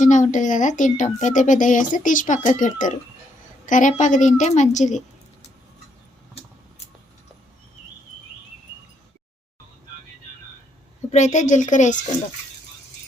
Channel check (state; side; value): normal; both; correlation 0.74